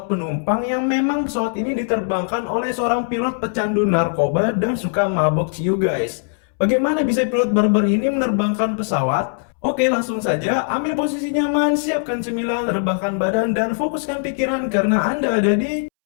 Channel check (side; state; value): right; silent; 66 dB below the other